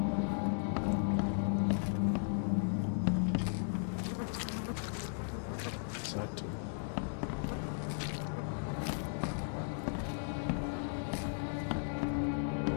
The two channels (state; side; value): silent; right; digital silence